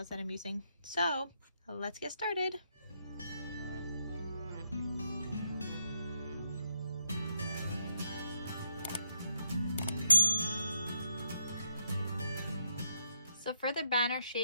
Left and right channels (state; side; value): inverted; both; correlation -0.81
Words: that I'm using. So let's get started. So for the banner